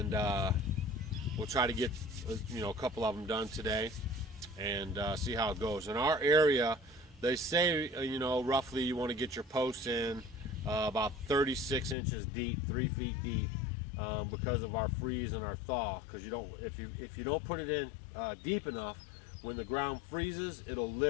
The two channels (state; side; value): drops out; right; at 12.0 s